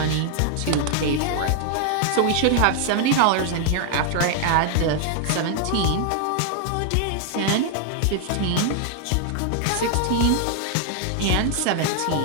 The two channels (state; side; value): different; both; correlation 0.00